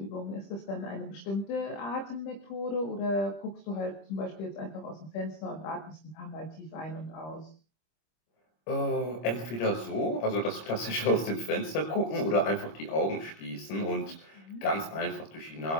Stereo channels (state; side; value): late; right; 25 ms